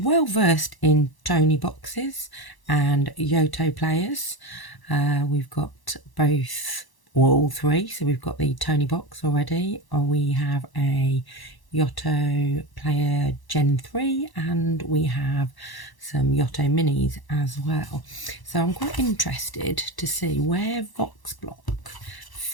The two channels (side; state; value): right; late; 1.0 ms